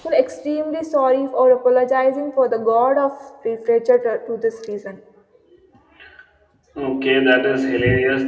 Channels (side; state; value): both; identical; correlation 1.00